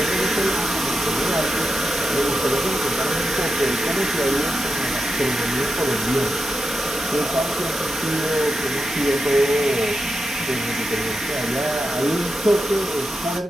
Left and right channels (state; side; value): normal; both; correlation 0.88